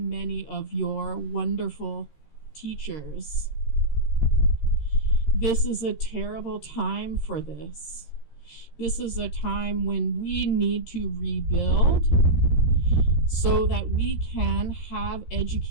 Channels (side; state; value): right; late; 13 ms